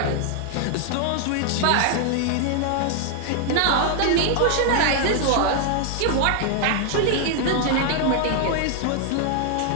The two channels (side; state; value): both; different; correlation 0.00